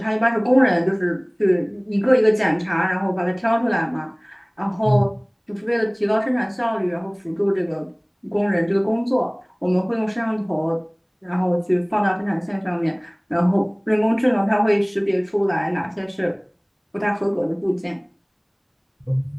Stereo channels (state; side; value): identical; both; correlation 1.00